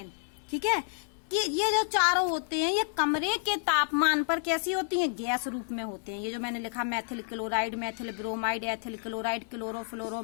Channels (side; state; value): right; silent; digital silence